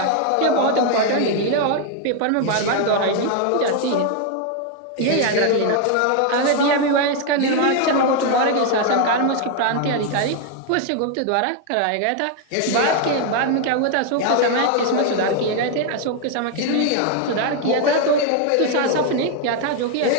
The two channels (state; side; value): different; both; correlation 0.00